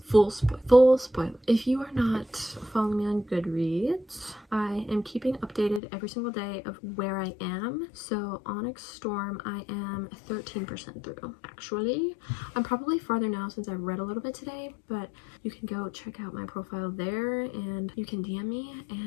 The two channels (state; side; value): drops out; right; at 5.8 s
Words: full spoil. If you are not following me on Goodreads, I am keeping updated every single day of where I am. So Onyx Storm, I am 13% through. Actually, I'm probably farther now since I've read a little bit today, but you can go check out my profile there and you can DM me